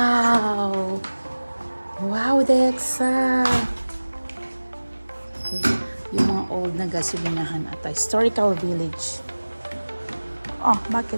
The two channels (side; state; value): both; inverted; correlation -1.00